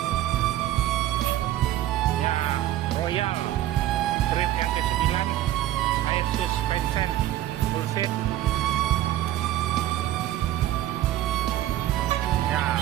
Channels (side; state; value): left; quieter; 13.7 dB